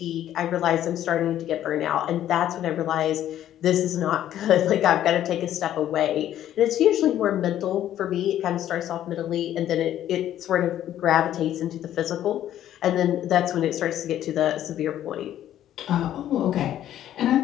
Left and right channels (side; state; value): right; quieter; 11.8 dB